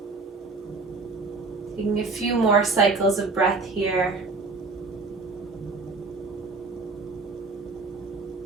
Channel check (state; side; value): quieter; left; 3.8 dB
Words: Taking a few more cycles of breath here.